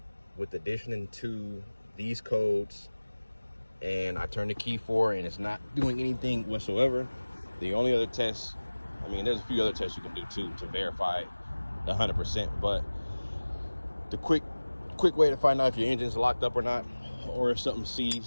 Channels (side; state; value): both; inverted; correlation -1.00